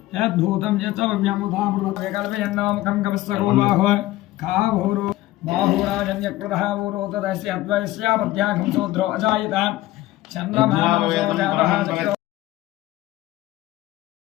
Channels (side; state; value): right; quieter; 16.6 dB